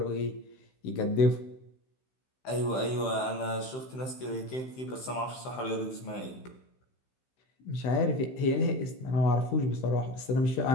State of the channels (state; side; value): late; right; 15 ms